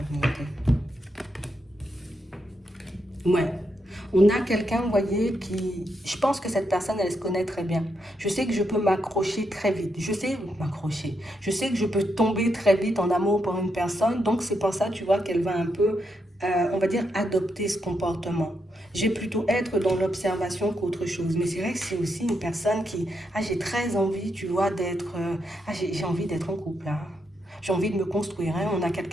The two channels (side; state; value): both; normal; correlation 0.81